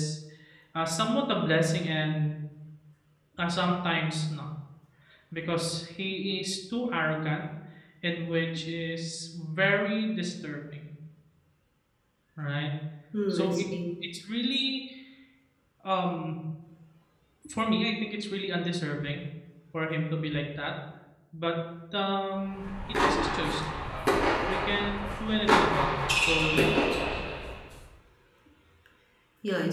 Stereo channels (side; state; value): both; identical; correlation 1.00